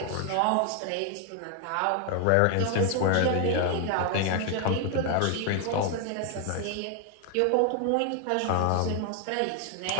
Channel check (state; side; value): different; both; correlation 0.00